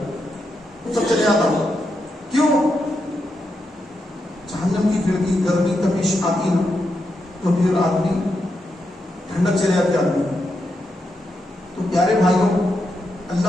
وہ سب چلے جاتا. کیوں؟ جہنم کی کھڑکی گرمی تپش آتی نا, تو پھر آدمی ٹھنڈک چلے جاتی آدمی. تو پیارے بھائیوں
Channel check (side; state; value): both; normal; correlation 0.84